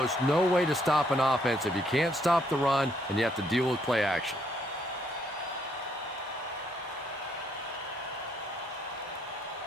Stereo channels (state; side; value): normal; both; correlation 0.71